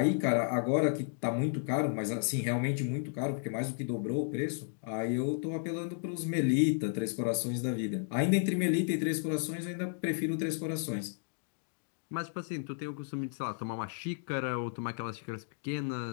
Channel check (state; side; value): silent; right; digital silence